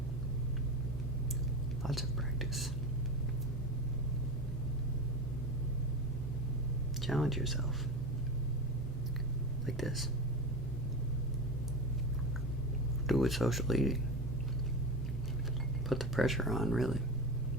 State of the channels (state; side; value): normal; both; correlation 0.24